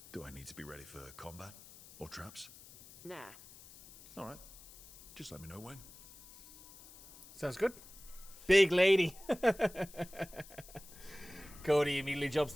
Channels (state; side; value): noise; left; hiss, 19 dB below the sound